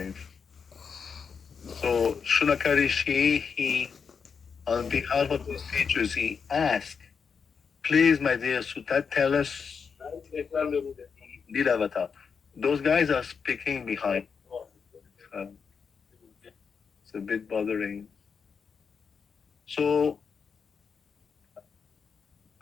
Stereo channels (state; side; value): quieter; right; 6.0 dB